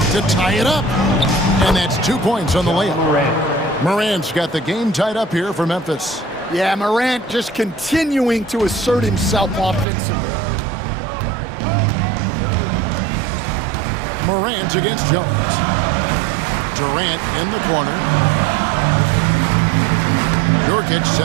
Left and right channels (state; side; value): drops out; left; at 9.9 s